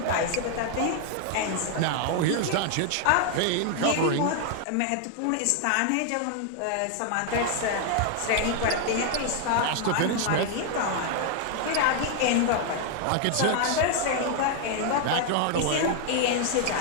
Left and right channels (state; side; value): different; both; correlation 0.00